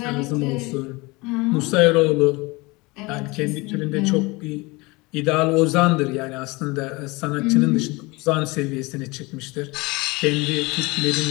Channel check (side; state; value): right; quieter; 24.4 dB